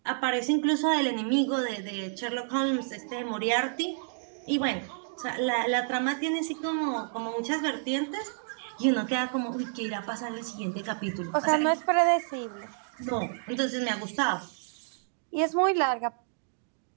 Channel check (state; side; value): silent; left; digital silence